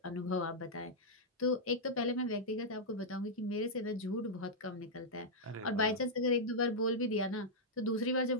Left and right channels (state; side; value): normal; both; correlation -0.06